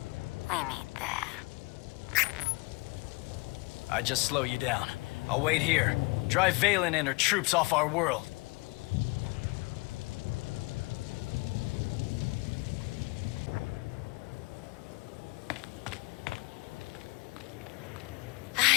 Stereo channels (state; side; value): quieter; right; 26.6 dB